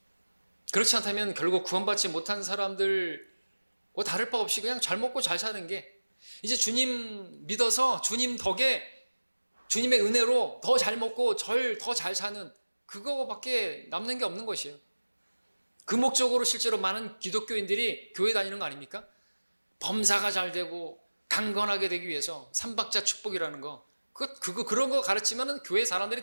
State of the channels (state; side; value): inverted; both; correlation -1.00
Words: 그렇지 않다면 결국 구원받지 못한 사람들과 다를 바 없이 그냥 잘 먹고 잘 사는 게 이제 주님 믿어서 주님 덕에 주님의 은혜로 더 잘 먹고 더 잘 사는 그거밖에 남는 게 없는 것이에요. 그 목적으로 실제로 많은 기독교인들이 교회 다니는 거 아닙니까? 범사가 잘 되고 강건하게 되기 위해서 삼박자 축복이라는 거 그런 거 가르치면은 교회